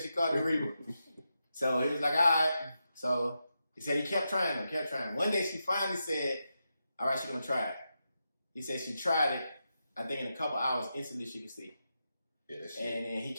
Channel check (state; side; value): inverted; both; correlation -0.87